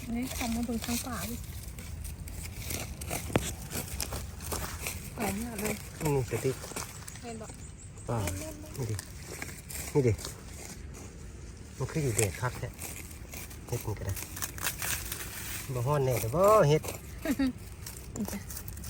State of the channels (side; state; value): both; identical; correlation 1.00